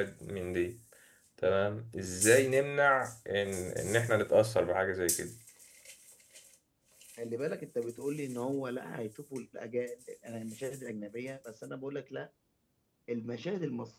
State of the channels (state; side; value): identical; both; correlation 1.00